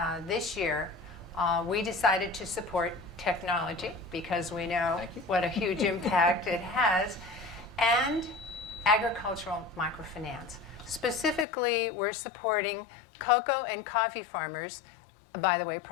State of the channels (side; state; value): right; drops out; at 11.5 s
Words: this year, we decided to support technology because we know what a huge impact it has, and agricultural microfinance. Specifically, we're supporting cocoa and coffee farmers, by the way,